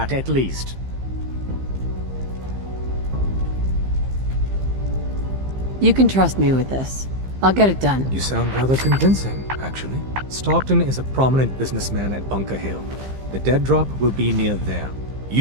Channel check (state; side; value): late; left; 15 ms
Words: at least. You can trust me with this. I'll get it done. You sound rather convincing, actually. Stockton is a prominent businessman at Bunker Hill. The dead drop will be near there.